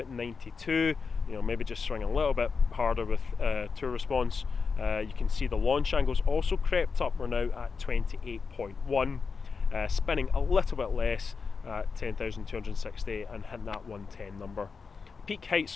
92, maybe just swing a little bit harder with Tour Response. You can see the launch angle's also crept up. We're now at 28.1, spinning a little bit less at 10,260 and hitting that 110 number. Peak height's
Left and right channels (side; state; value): right; quieter; 5.1 dB